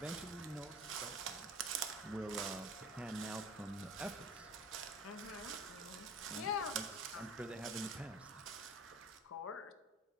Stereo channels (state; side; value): normal; both; correlation 0.39